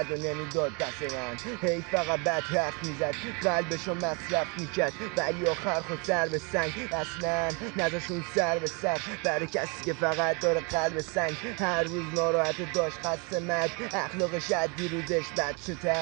و نمیداد دست من، هی فقط بد حرف میزد، قلبشو مصرف میکرد، ولی آخر خود سر به سنگ، اصلا نذاشون سر به سر برای کسی که فقط داره قلب سنگ. هر روز ناراحت داشت، خسته مرگ، اخلاقش عدی روزش بچه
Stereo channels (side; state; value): left; quieter; 32.0 dB